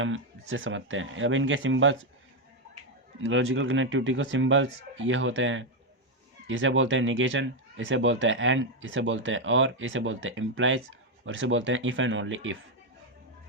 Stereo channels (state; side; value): normal; both; correlation 0.03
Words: इससे समझते हैं। अब इनके सिंबल्स, लॉजिकल कनेक्टिविटी को सिंबल्स ये होते हैं, इसे बोलते हैं निगेशन, इसे बोलते हैं एंड, इसे बोलते हैं और, इसे बोलते हैं इम्प्लाइज और इसे बोलते हैं इफ़ एंड ओनली इफ़।